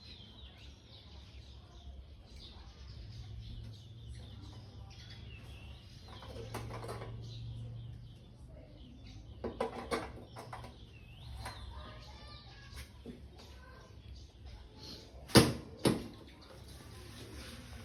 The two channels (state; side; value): identical; both; correlation 1.00